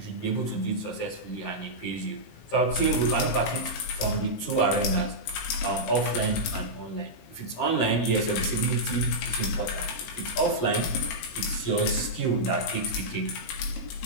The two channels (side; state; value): right; late; 18 ms